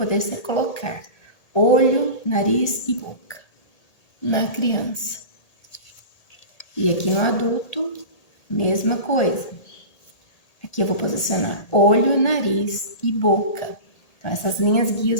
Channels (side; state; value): right; late; 1.8 ms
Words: colocar olho, nariz e boca na criança. E aqui no adulto, mesma coisa. Aqui eu vou posicionar olho, nariz e boca. Então, essas linhas